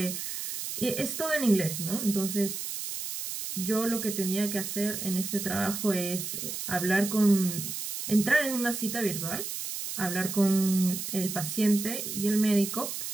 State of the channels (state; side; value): noise; right; hiss, 5 dB below the sound